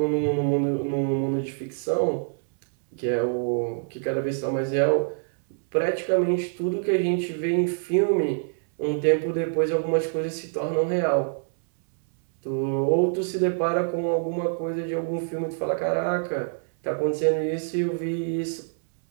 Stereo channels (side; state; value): left; silent; 61 dB below the other